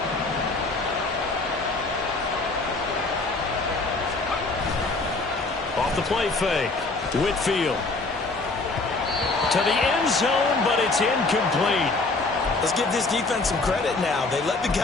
Off the play fake, Whitfield. To the end zone, but it's incomplete. Let's give this defense some credit now. They let the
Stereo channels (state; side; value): quieter; right; 3.5 dB